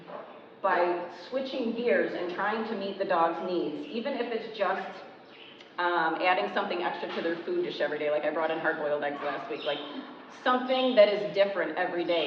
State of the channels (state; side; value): identical; both; correlation 1.00